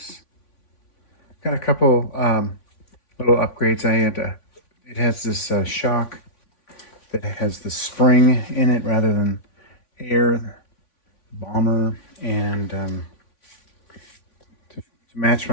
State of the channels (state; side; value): late; right; 3.5 ms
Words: Got a couple little upgrades. It has this shock that has the spring in it rather than air, bomber, and to match